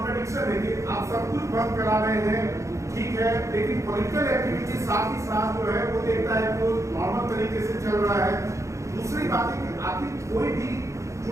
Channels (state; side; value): late; left; 0.15 ms